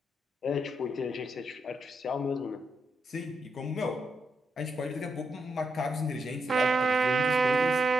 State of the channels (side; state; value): both; normal; correlation 0.81